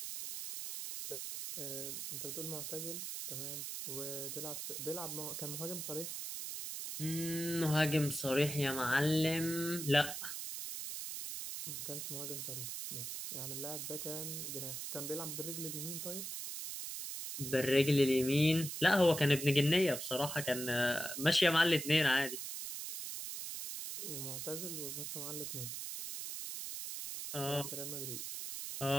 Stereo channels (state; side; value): noise; right; hiss, 5 dB below the sound